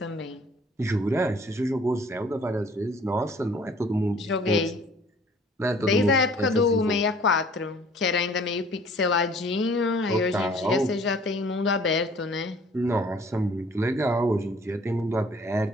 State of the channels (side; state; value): both; normal; correlation 0.54